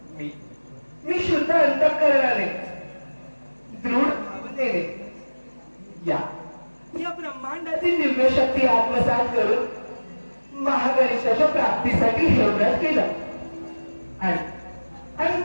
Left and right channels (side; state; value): both; inverted; correlation -1.00